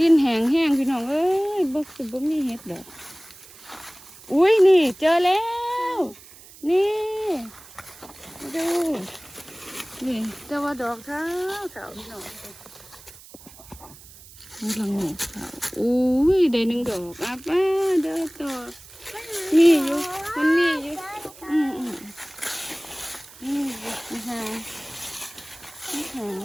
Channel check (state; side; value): noise; right; hiss, 20 dB below the sound